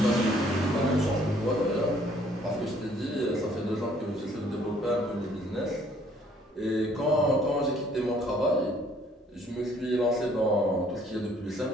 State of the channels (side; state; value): both; normal; correlation 0.61